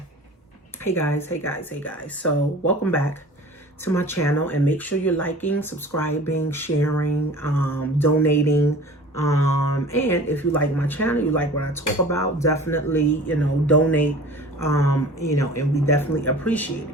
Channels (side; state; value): both; normal; correlation 0.42